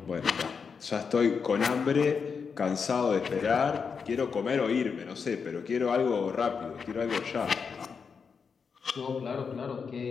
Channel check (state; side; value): quieter; right; 5.8 dB